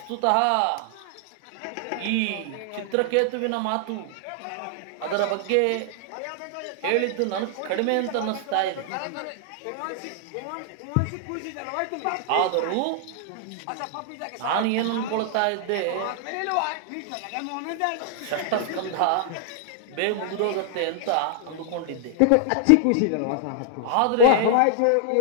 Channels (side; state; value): both; different; correlation -0.01